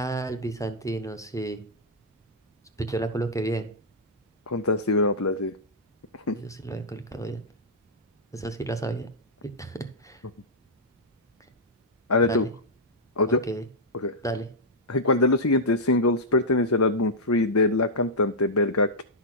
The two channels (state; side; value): normal; both; correlation -0.09